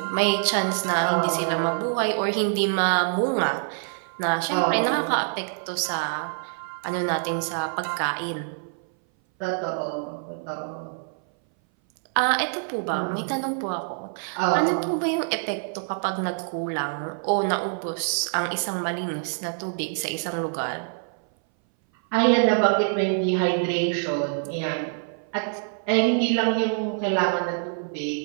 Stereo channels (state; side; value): silent; left; 59 dB below the other